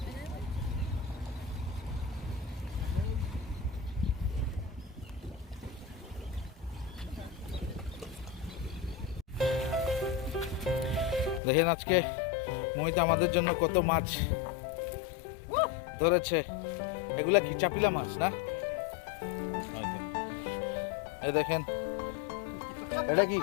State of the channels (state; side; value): drops out; right; at 11.4 s